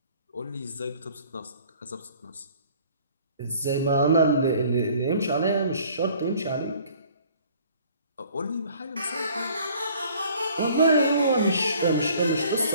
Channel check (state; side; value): inverted; both; correlation -0.54